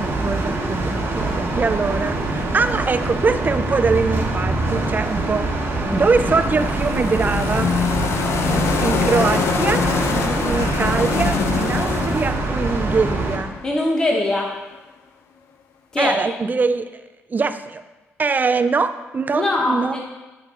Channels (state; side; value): normal; both; correlation 0.75